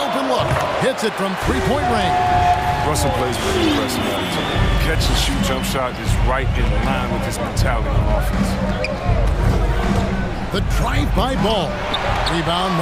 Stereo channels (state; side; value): identical; both; correlation 1.00